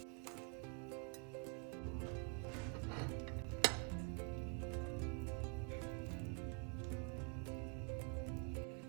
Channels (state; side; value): quieter; left; 34.7 dB